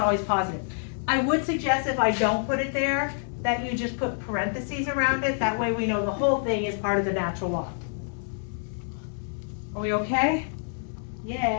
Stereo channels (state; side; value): silent; right; digital silence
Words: positive. I would suggest if I don't put it there, that you just put parentheses around it, that way we know the whole thing is part of the natural log. Are we okay?